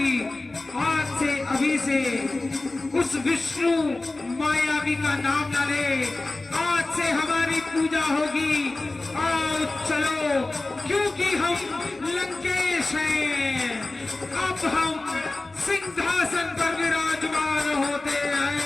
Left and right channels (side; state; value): right; quieter; 3.0 dB